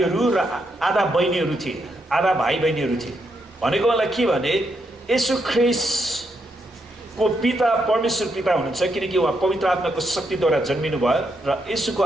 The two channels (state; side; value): normal; both; correlation 0.80